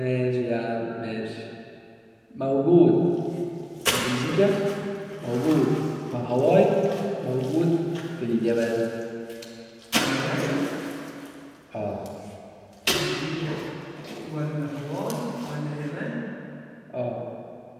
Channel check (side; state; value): both; identical; correlation 1.00